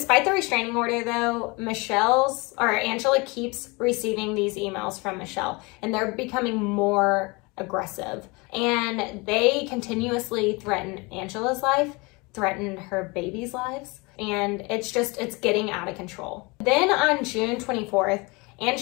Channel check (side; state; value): right; quieter; 26.8 dB